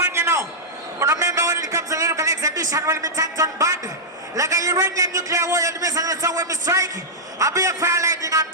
you know. But remember when it comes to lyrical exhibition, when we tank on bad. Like a uranium nuclear war, the missile and so when we strike, I'll be a fire lightning and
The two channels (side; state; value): both; normal; correlation -0.08